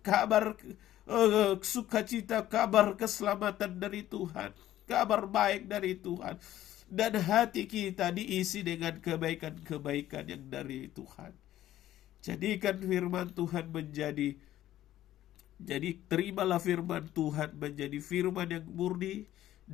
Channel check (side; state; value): right; quieter; 13.5 dB